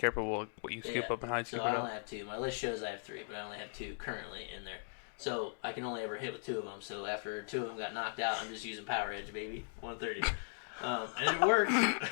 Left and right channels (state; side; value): silent; right; digital silence